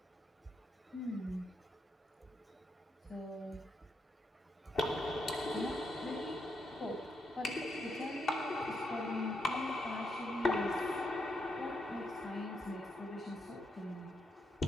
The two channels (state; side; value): normal; both; correlation 0.81